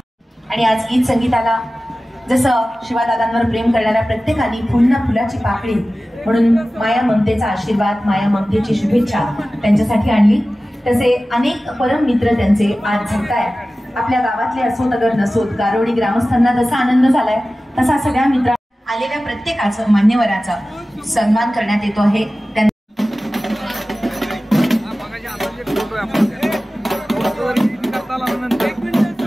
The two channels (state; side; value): normal; both; correlation 0.96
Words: आणि आज गीत संगीताला जसं शिवादादांवर प्रेम करणाऱ्या प्रत्येकाने पुन्हा फुलाची पाकळी म्हणून माया ममतेचा आशीर्वाद, माया ममतेची शुभेच्छा त्यांच्यासाठी आणली. तसे अनेक परम मित्र त्यांचे आज झगतायत. आपल्या गावातले असोत अगर नसोत, गारोडी ग्रामस्थांना जसा आनंद झालाय तसा सगळ्या मित्र आलेल्या प्रत्येकाचं, मान्यवराचा सन्मान करण्यात येतो आहे.